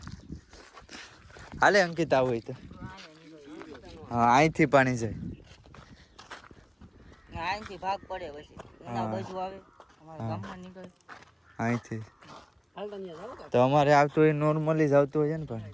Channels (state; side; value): identical; both; correlation 1.00